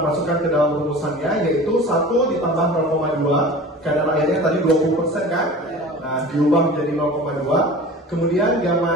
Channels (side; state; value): both; normal; correlation 0.38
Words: ke dalam rumusannya yaitu 1 ditambah 0,2. Kadar airnya tadi 20% kan? Nah, diubah menjadi 0,2. Kemudian